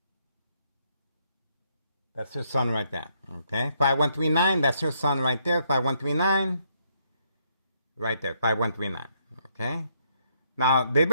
That's her son right there. Okay. 5139. That's her son right there. 5139. Right there. 5139. Okay. Now, they've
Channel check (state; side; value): inverted; both; correlation -0.73